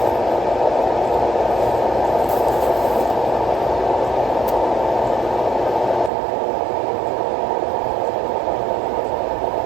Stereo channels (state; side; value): drops out; left; at 6.1 s